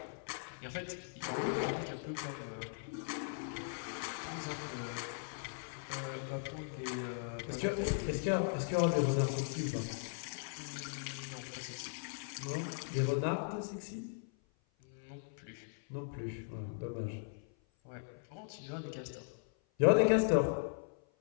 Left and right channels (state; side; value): silent; right; 52 dB below the other